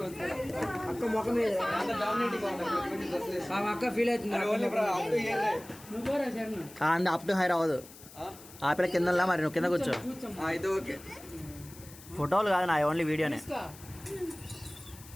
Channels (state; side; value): noise; left; hiss, 19 dB below the sound